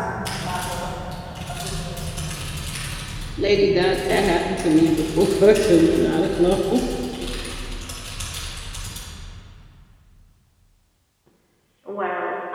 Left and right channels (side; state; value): both; identical; correlation 1.00